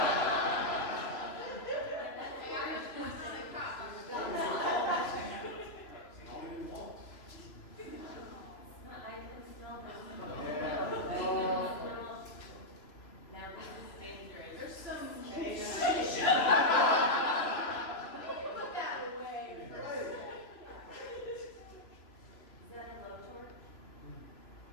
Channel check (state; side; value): late; right; 3.0 ms